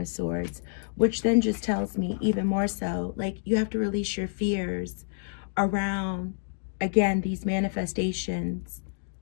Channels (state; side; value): silent; right; digital silence